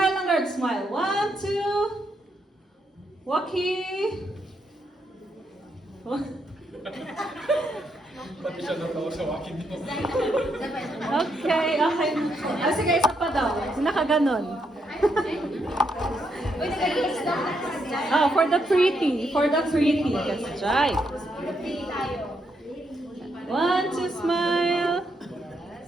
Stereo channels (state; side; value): normal; both; correlation 0.78